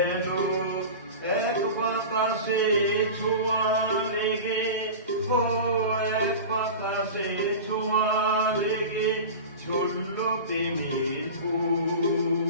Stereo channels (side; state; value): both; inverted; correlation -0.31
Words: এক বাতাসে ছোঁয়া লেগে, এক বাতাসে ছোঁয়া লেগে ঝরল প্রেমের